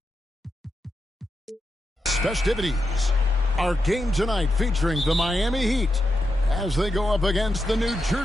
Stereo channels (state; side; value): normal; both; correlation 0.87